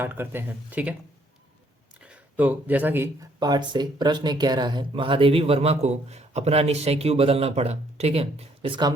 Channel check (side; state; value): both; normal; correlation 0.66